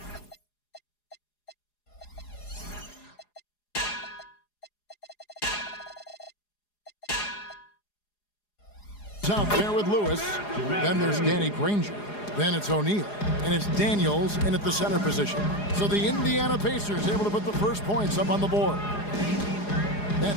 out there with Lewis. Then there's Danny Granger. Then it's O'Neal. And it's Daniels in at the center position. So the Indiana Pacers able to put the first points up on the board.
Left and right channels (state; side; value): late; right; 4.8 ms